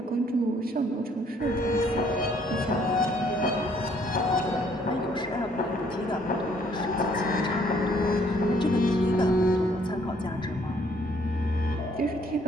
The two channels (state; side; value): normal; both; correlation 0.64